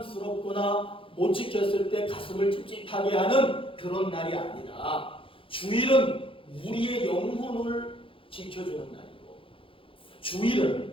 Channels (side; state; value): right; late; 0.26 ms